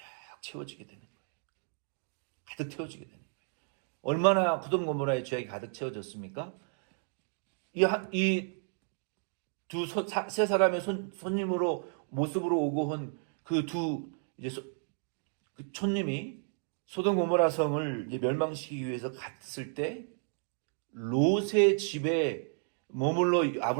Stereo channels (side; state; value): left; silent; 56 dB below the other